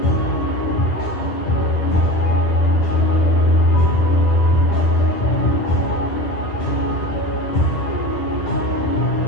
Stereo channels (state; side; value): late; right; 9.9 ms